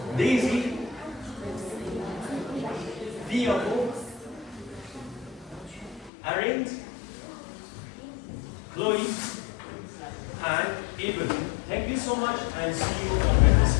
Daisy? Diego? Arendt? Chloe? And Evelyn. Thank you so much and see you on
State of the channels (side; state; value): right; drops out; at 6.1 s